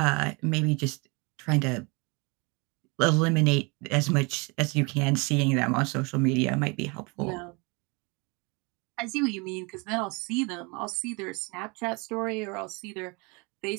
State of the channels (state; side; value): quieter; left; 29.1 dB